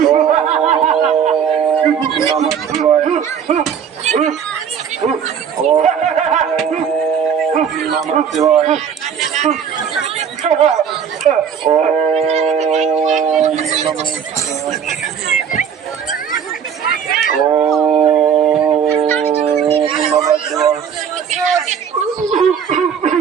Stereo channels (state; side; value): quieter; left; 7.6 dB